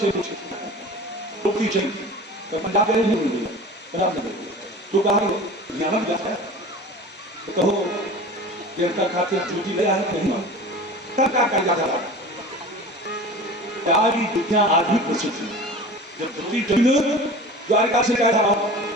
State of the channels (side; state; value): both; normal; correlation 0.37